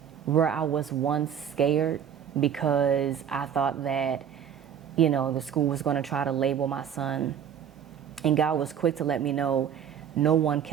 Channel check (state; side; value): quieter; left; 8.6 dB